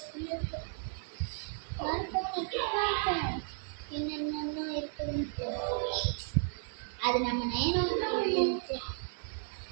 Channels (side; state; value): left; silent; digital silence